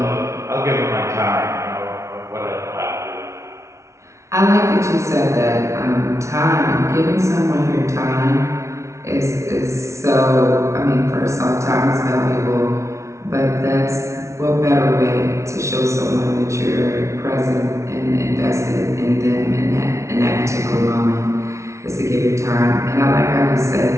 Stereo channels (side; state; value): left; late; 0.14 ms